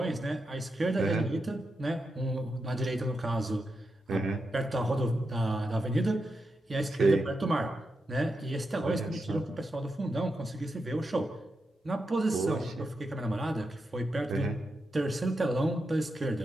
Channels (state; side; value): normal; both; correlation 0.86